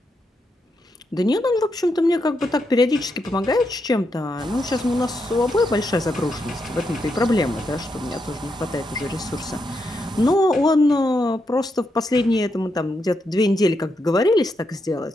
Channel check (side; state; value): both; normal; correlation 0.82